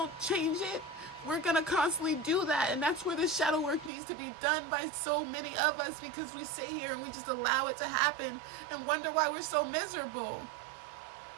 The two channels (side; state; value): left; drops out; at 3.9 s